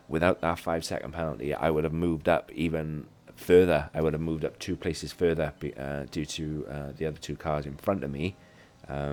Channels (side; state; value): both; identical; correlation 1.00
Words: without that 5-second penalty, I would have moved up even further. I would have moved up 2 places further due to the other 2 cars in front of me